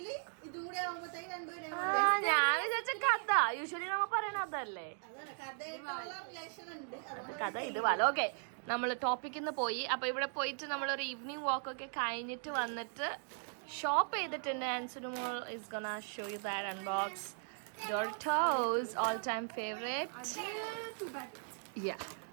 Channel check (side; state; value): left; silent; 53 dB below the other